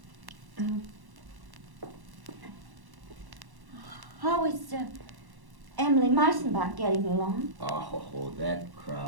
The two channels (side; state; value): left; late; 1.1 ms